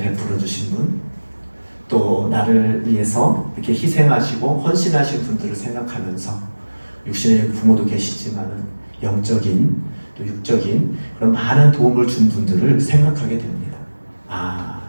주신 분, 또 나를 위해서 이렇게 희생하시고 헌신하신 분들을 생각하면서 육신의 부모도 계시지만 영적인 또 육적인 그런 많은 도움을 준 분들을 생각하게 됩니다.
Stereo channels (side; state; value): both; inverted; correlation -1.00